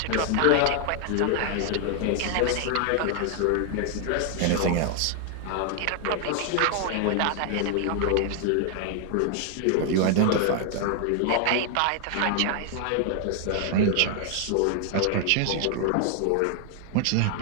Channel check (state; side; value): different; both; correlation 0.00